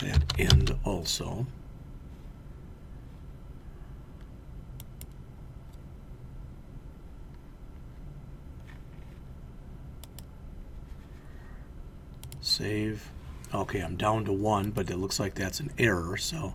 end also. Save. Okay, I'm down to 1, but it looks like that's an error, so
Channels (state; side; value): identical; both; correlation 1.00